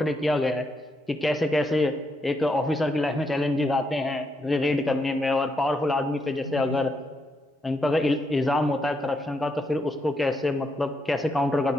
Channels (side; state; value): both; normal; correlation 0.80